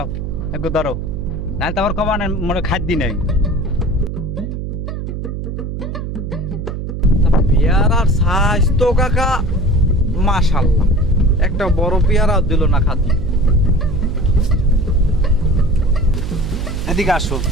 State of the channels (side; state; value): right; noise; hum, 5 dB below the sound